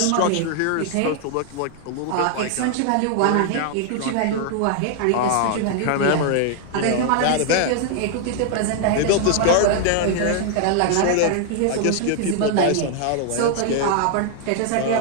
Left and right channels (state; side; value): different; both; correlation 0.00